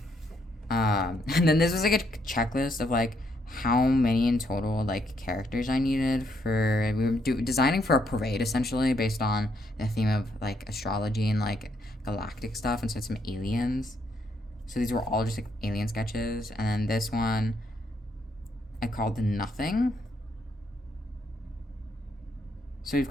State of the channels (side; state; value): both; normal; correlation 0.74